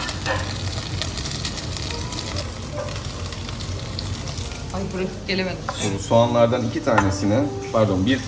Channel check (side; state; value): both; identical; correlation 1.00